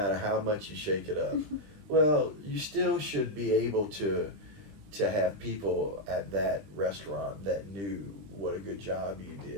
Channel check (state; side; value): late; left; 20 ms